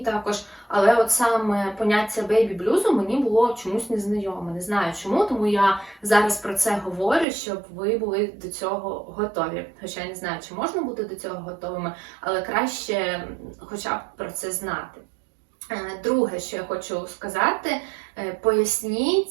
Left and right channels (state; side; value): drops out; left; at 7.2 s